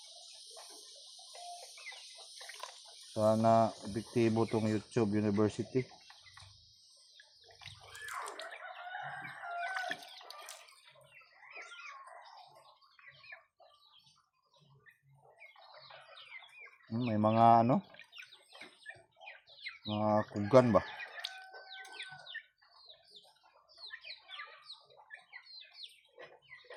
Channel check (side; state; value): both; identical; correlation 1.00